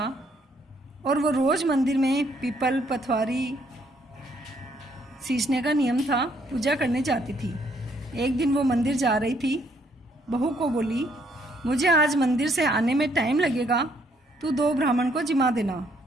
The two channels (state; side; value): normal; both; correlation 0.69